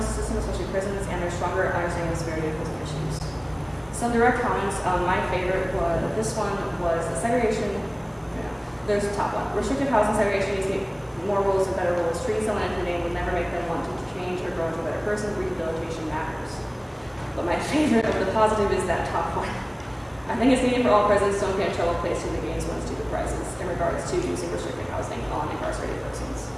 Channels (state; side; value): identical; both; correlation 1.00